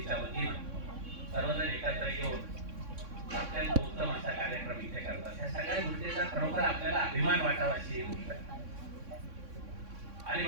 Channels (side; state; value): left; late; 3.6 ms